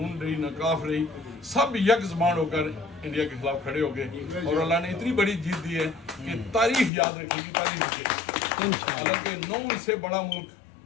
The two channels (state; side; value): drops out; right; at 6.9 s